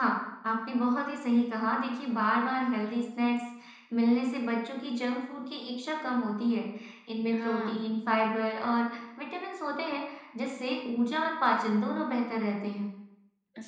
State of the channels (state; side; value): identical; both; correlation 1.00